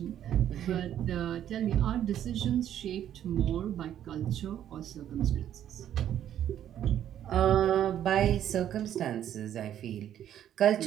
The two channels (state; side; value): quieter; left; 10.7 dB